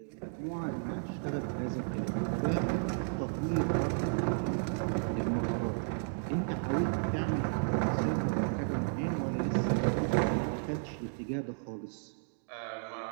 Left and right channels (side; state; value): left; silent; digital silence